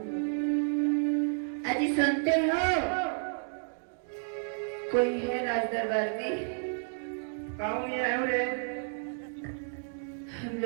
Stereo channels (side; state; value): left; silent; digital silence